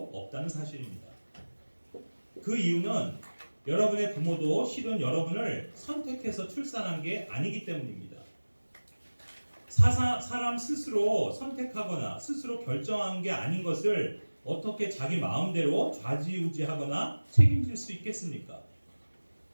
없다는 사실입니다. 그 이유는 여러분의 부모도 실은 여러분을 선택해서 출산한 게 아니기 때문입니다. 사람 스스로 선택하거나 스스로 결정한 게 아닌 것을 어떻게 자기 마음대로 좌지우지하거나 책임질 수 있겠습니까?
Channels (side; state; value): both; inverted; correlation -1.00